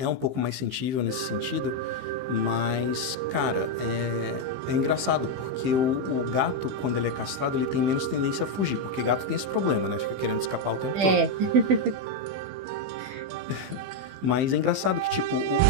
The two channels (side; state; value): left; late; 15 ms